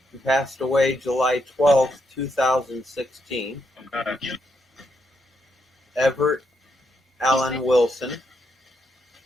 He passed away July 12th, 2016. Everett Allen Wilson.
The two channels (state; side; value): normal; both; correlation 0.80